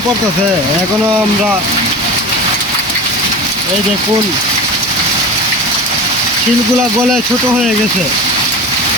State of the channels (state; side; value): normal; both; correlation 0.31